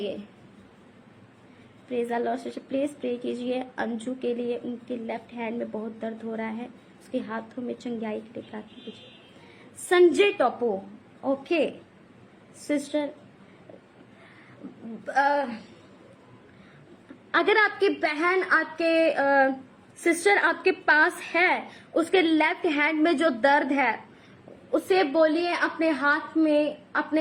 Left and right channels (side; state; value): both; identical; correlation 1.00